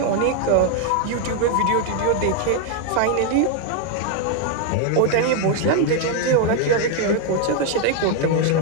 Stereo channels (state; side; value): different; both; correlation 0.01